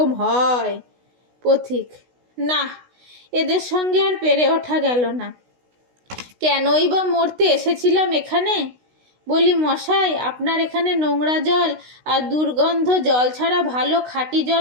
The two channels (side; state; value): left; late; 16 ms